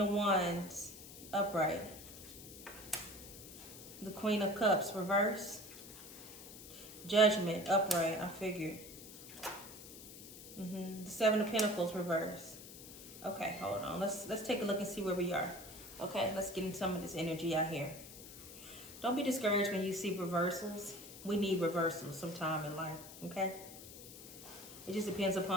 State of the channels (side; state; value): left; noise; hiss, 14 dB below the sound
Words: Wands upright. The Queen of Cups reverse. Judgment upright. I figured. The 7 of Pentacles reverse. Okay, hold on. Let's take a look and see where we are. Okay, let's get in some of this energy out here. Don't be discouraged when you see reversals. We need reversals sometime in life. Okay. It just depends